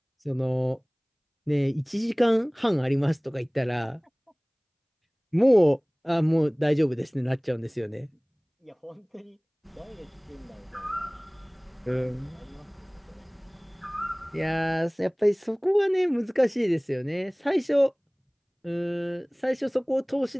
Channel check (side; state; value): both; identical; correlation 1.00